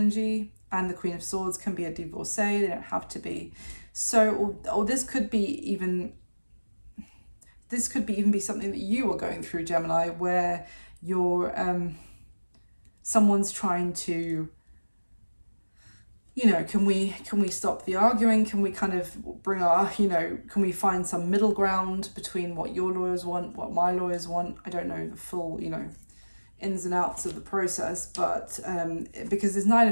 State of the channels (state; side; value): inverted; both; correlation -1.00